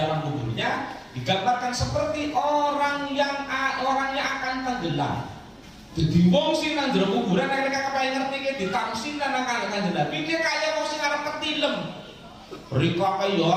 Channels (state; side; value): identical; both; correlation 1.00